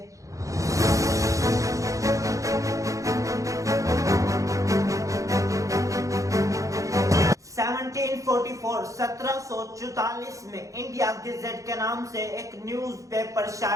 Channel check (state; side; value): late; left; 0.16 ms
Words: 1744 में इंडिया गेजेट के नाम से एक न्यूज़पेपर